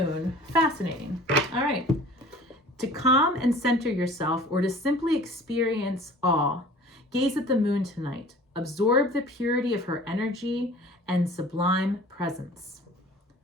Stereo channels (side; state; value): both; normal; correlation 0.46